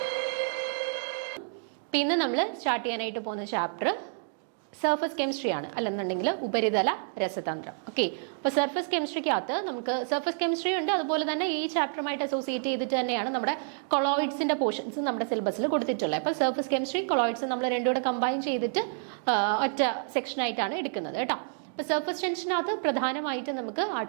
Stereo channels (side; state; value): left; silent; digital silence